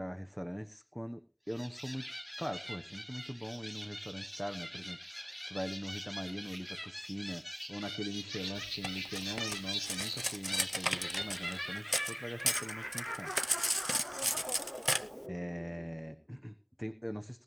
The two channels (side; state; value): both; identical; correlation 1.00